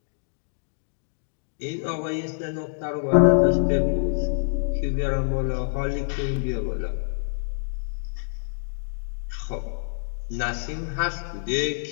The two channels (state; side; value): silent; right; digital silence